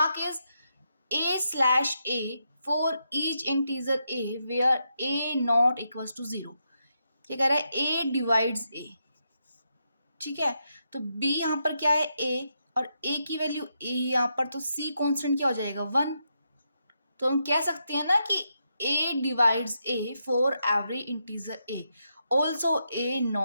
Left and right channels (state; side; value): inverted; both; correlation -0.82